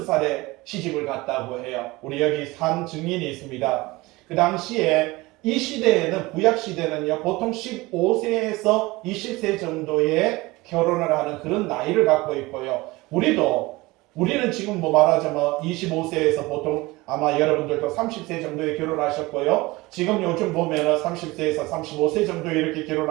시집을 갔다고 해요. 우리 여기 산 증인이 있습니다. 그 당시에 이 시대에는 구약 시대는요 보통 15세에서 20세 정도의 결혼을 하는 그런 나이를 갖고 있고요. 우리는 지금 뭐 말하자면 25세에서 보통 아마 여러분들도 30세 정도에 결혼하셨고요. 지금 요즘 보면은 30세에서 35세 정도에 이렇게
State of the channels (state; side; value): quieter; left; 21.4 dB